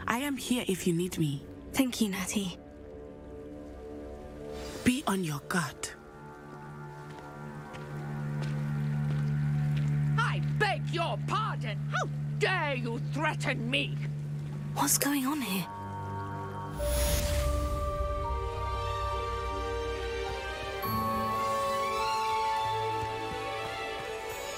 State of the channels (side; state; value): both; identical; correlation 1.00